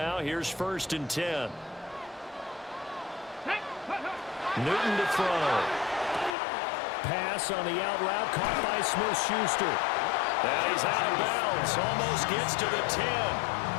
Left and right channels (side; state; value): right; drops out; at 6.4 s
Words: here's first and 10. Newton to throw. Pass on the out route, caught by Smith-Schuster. And he's out of bounds, almost gets to the 10.